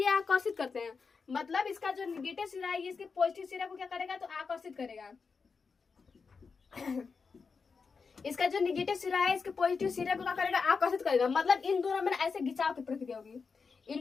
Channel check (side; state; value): right; quieter; 5.1 dB